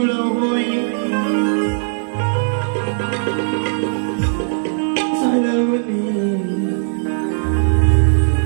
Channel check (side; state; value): left; silent; digital silence